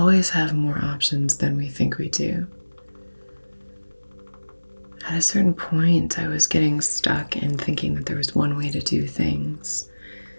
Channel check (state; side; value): inverted; both; correlation -1.00